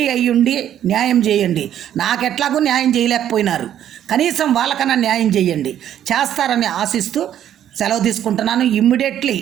అయ్యుండి న్యాయం చేయండి. నాకెట్లాగూ న్యాయం చేయలేకపోయినారు, కనీసం వాళ్ళకన్నా న్యాయం చేయండి. చేస్తారని ఆశిస్తూ సెలవు తీసుకుంటున్నాను. ఇమ్మీడియట్లీ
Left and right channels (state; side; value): quieter; left; 10.7 dB